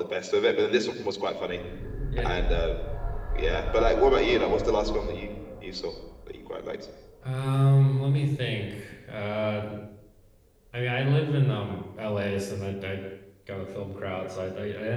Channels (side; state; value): both; identical; correlation 1.00